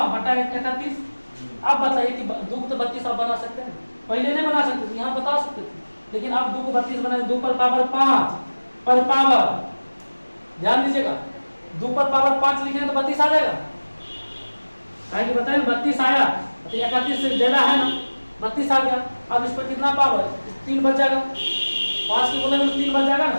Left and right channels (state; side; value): inverted; both; correlation -1.00